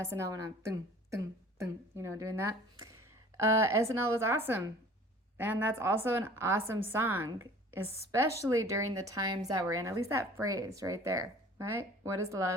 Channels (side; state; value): both; normal; correlation 0.47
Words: when I'm doing that. SNL was awesome. And that's also an awesome song, especially during the times that we're in. At least that phrase right there, right? What is